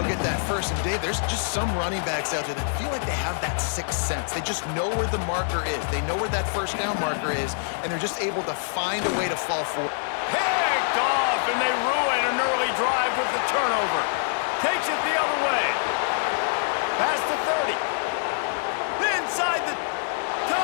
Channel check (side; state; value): right; silent; 57 dB below the other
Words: get that first. And, Dave, there's just some running backs out there that feel like they have that sixth sense. They just know where the marker is. They know where that first down marker is, and they're just able to find a way to fall forward. Picked off, and they ruin an early drive with the turnover. Takes it the other way. Past the 30. Inside the